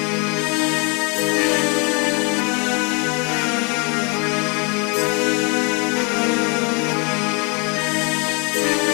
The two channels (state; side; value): quieter; right; 33.5 dB